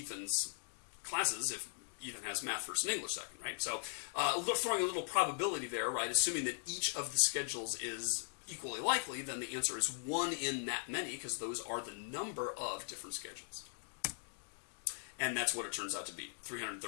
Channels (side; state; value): right; silent; digital silence